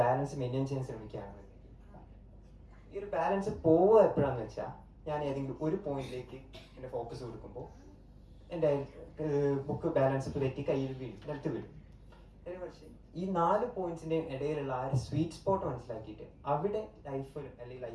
ബാലൻസ് മെയിൻറ്റെയിൻ ചെയ്യാൻ ശ്രമിക്കുകയാണ്. ഈ ഒരു ബാലൻസ് പോവുക എപ്പോഴാന്ന് വെച്ചാൽ ഞാൻ ഏതെങ്കിലും ഒരു പോയിന്റിലേക്ക് എൻ്റെ ഫോക്കസ് കൊടുക്കുമ്പോൾ എൻ്റെ ബുക്ക് ബാലൻസ് തെറ്റി കയ്യിൽ വീഴും, നിലത്ത് വീഴും. പക്ഷേ ഈ 4 പോയിന്റ്സിന്റെ ഇടയിലുള്ള ആ ഒരു സ്വീറ്റ് സ്പോട്ട് മനസ്സിലാക്കിയിട്ട് അവിടെ ലൈഫ് അല്ലെങ്കിൽ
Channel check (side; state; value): both; identical; correlation 1.00